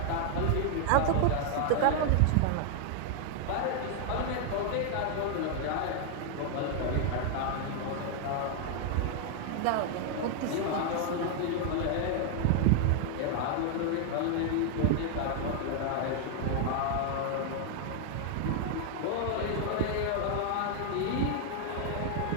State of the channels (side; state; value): both; different; correlation 0.00